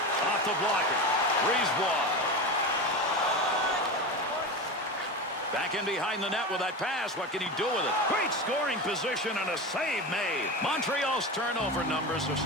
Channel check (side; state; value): both; normal; correlation 0.24